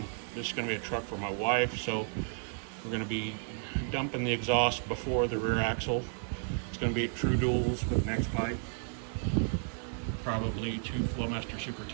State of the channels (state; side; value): silent; left; 56 dB below the other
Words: This is going to be a truck for my wife, so we're going to be dumping the exhaust before the rear axle. It's going to be true duals with next pipe, probably 2 Flowmaster Super